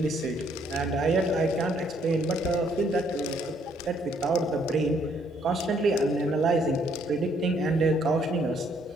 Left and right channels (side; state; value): both; normal; correlation 0.68